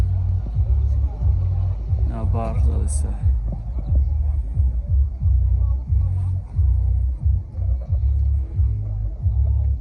نه برق زده سر.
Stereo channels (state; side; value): identical; both; correlation 1.00